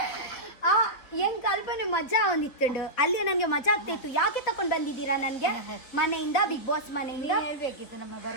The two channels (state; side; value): late; right; 4.2 ms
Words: ಹೆಂಗ್ ಕಲ್ಪನೆ ಮಜಾ ಒಂದಿತ್ತುಂಡು. ಅಲ್ಲಿ ನನಗೆ ಮಜಾ ಆಗ್ತಾ ಇತ್ತು. ಯಾಕೆ ತಕೊಂಡು ಬಂದಿದ್ದೀರಾ ನನಗೆ ಮನೆಯಿಂದ, ಬಿಗ್ ಬಾಸ್ ಮನೆಯಿಂದ?